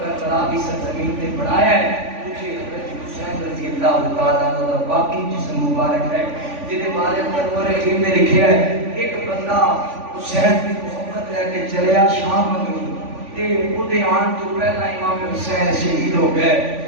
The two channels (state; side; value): late; left; 3.5 ms